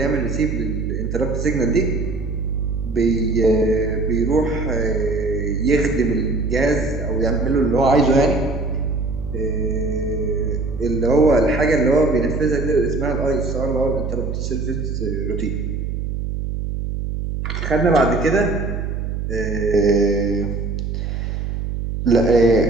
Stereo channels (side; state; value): right; noise; hum, 3 dB below the sound